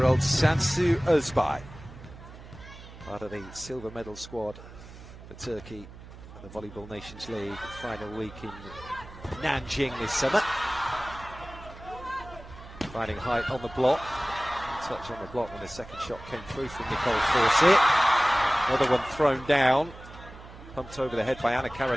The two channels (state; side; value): noise; right; hum, 17 dB below the sound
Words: Sansu Özbay, part of the silver medal squad for Turkey at the Volleyball Nations League final week in Nanjing this summer. Finding height on the block, touch on the block when the second shot came through from Nicole Fawcett. Another one thrown down, pumped over the head by Ana